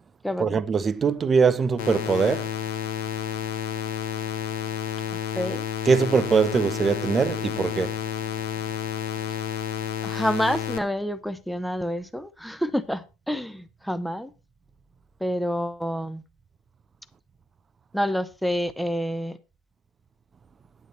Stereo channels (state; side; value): normal; both; correlation 0.73